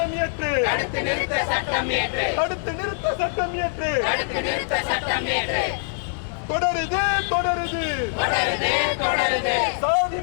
இயற்று. தொடருது சாதி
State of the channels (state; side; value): silent; right; digital silence